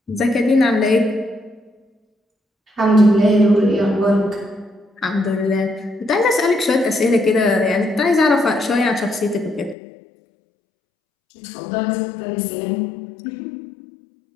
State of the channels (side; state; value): right; drops out; at 9.8 s